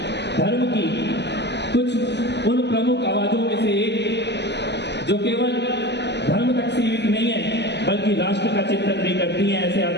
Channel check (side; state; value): right; late; 0.50 ms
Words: धर्म की कुछ उन प्रमुख आवाजों में से एक जो केवल धर्म तक सीमित नहीं है बल्कि राष्ट्र का चिंतन भी करती हैं, ऐसे